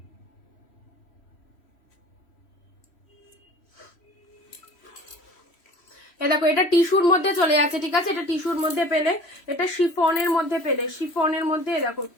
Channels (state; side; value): late; right; 3.1 ms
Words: দেখো এটা টিস্যুর মধ্যে চলে যাচ্ছে, ঠিক আছে। এটা টিস্যুর মধ্যে পেলে, এটা শিফনের মধ্যে পেলে, শিফনের মধ্যে দেখো